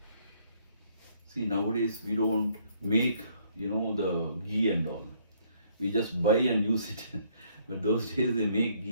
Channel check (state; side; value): inverted; both; correlation -0.66